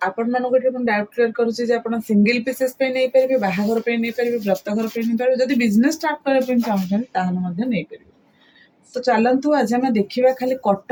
आपण मानक डाउट क्लियर करुच्ची जे आपण सिंगल पीसेस पे नहीं पारे, बाहाघर पे नहीं पारे, व्रतघर पे नहीं पारे, जदि बिजनेस स्टार्ट करबा चाहूछन ताहले मध्ये नहीं पारे। तो चलतु आज आम देखा खाली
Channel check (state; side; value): identical; both; correlation 1.00